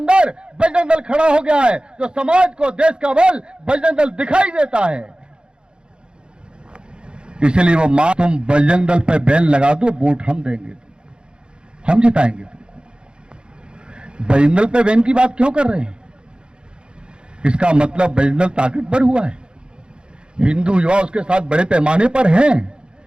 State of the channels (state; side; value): late; left; 0.051 ms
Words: बजरंग दल खड़ा हो गया है, जो समाज को देश का बल बजरंग दल दिखाई देता है। इसलिए वो मां, तुम बजरंग दल पे बैन लगा दो, वोट हम देंगे, हम जिताएंगे तुमको। बजरंग दल पे बैन की बात क्यों कर रहे हैं? इसका मतलब बजरंग दल ताकतवर हुआ है, हिंदू युवा उसके साथ बड़े पैमाने पर हैं।